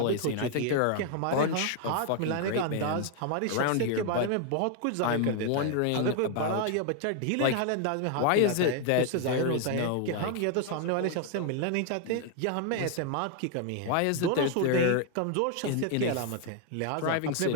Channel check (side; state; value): both; different; correlation 0.00